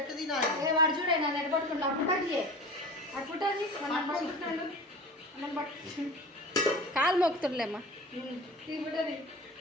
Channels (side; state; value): both; normal; correlation 0.35